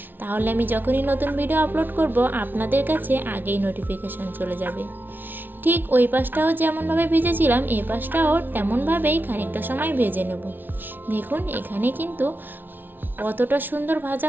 তাহলে আমি যখনই নতুন ভিডিও আপলোড করব আপনাদের কাছে আগেই নোটিফিকেশান চলে যাবে। ঠিক ওই পাশটাও যেমনভাবে ভেজেছিলাম এই পাশটাও তেমনভাবেই খানিকটা সময় ভেজে নেব। দেখুন, এখানে কিন্তু কতটা সুন্দর ভাজা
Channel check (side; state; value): left; late; 0.093 ms